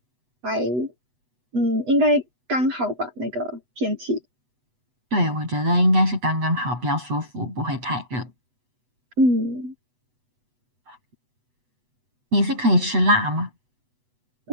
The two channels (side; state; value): left; late; 8.1 ms